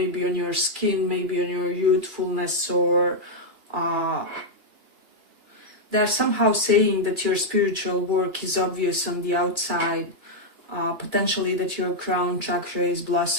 on your skin, maybe on your youthfulness, or they're somehow saying that your spiritual work is obvious on the outside, potentially that your crown chakra is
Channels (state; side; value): late; left; 2.9 ms